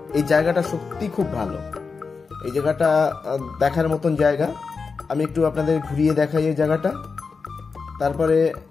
এই জায়গাটা সত্যি খুব ভালো। এই জায়গাটা দেখার মতন জায়গা। আমি একটু আপনাদের ঘুরিয়ে দেখাই এই জায়গাটা, তারপরে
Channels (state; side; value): quieter; right; 4.9 dB